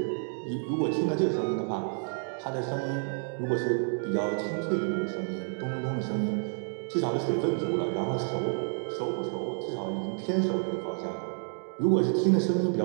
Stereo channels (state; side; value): silent; left; 58 dB below the other